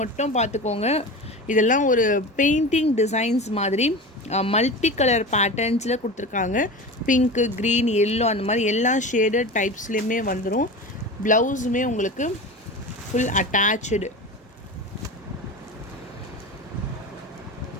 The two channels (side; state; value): both; normal; correlation 0.30